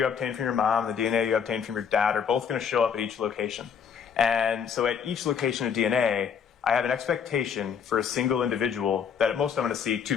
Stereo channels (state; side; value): quieter; right; 7.2 dB